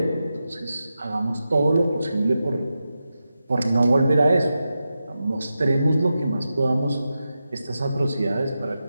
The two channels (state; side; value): inverted; both; correlation -0.90